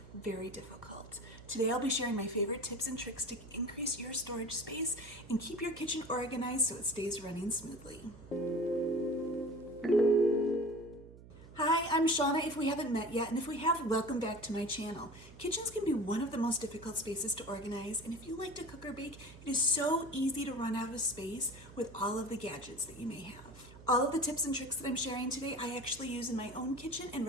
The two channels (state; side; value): noise; right; hum, 18 dB below the sound